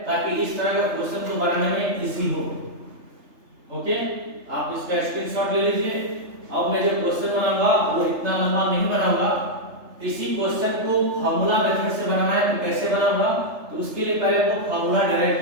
ताकि इस तरह का क्वेश्चन को बनाने में इजी हो। ओके, आप इसका स्क्रीनशॉट ले लीजिए। अब मैं जो क्वेश्चन बनाऊंगा वो इतना लंबा नहीं बनाऊंगा, इसी क्वेश्चन को फार्मूला मेथड से बनाना है, तो कैसे बनाऊंगा, तो उसके लिए पहले आपको फार्मूला डिराइव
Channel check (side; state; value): left; late; 3.3 ms